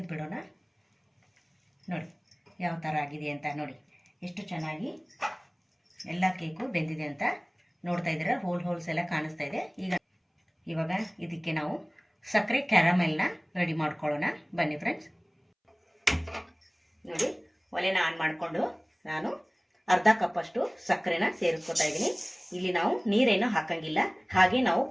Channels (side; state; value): both; identical; correlation 1.00